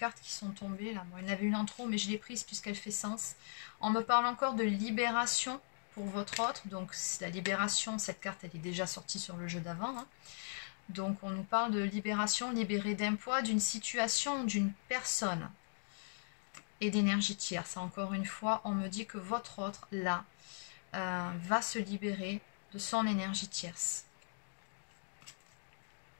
qui sont tombées. Là. Bon, il y en avait une en trop, mais je l'ai prise puisqu'elle fait sens. On me parle encore de libération pour votre autre. Donc la libération, cette carte, elle est déjà sortie sur le jeu d'avant. Hein. Donc on nous parle de libération, libérée d'un poids, d'une situation, d'une personne. Et d'énergie tierce. Encore une fois, on me dit que votre autre, là, va se libérer de son énergie tierce.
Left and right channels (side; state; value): right; silent; digital silence